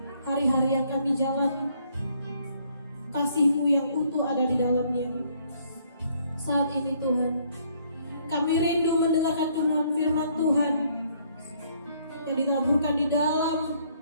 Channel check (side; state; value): both; inverted; correlation -0.66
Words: hari-hari yang kami jalani, kasih-Mu yang utuh ada di dalamnya. Saat ini Tuhan, kami rindu mendengarkan kebenaran firman Tuhan yang ditaburkan di dalam